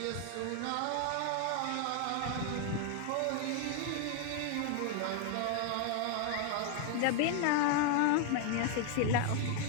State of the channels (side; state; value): both; different; correlation 0.00